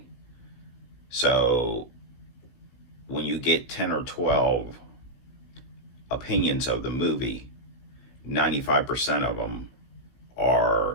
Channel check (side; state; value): right; late; 16 ms